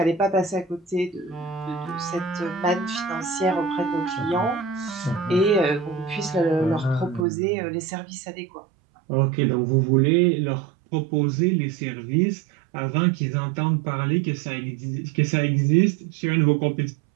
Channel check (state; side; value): drops out; left; at 7.2 s